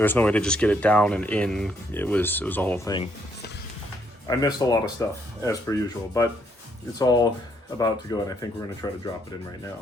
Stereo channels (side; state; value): both; normal; correlation 0.71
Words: no way to just get it down and in. It was a whole thing. I missed a lot of stuff as per usual, but it's all about to go, and I think we're gonna try to drop it in right